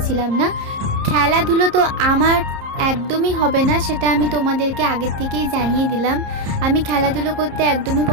না। খেলাধুলো তো আমার একদমই হবে না, সেটা আমি তোমাদেরকে আগের থেকেই জানিয়ে দিলাম। আমি খেলাধুলো করতে একদমই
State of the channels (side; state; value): left; late; 30 ms